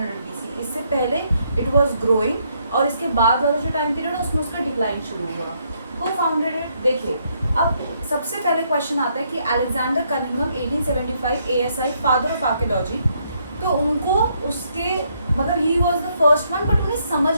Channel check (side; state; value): both; inverted; correlation -0.73